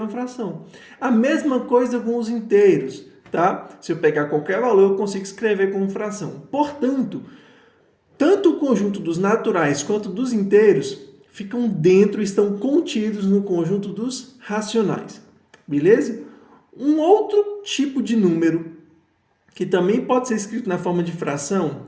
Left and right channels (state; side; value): identical; both; correlation 1.00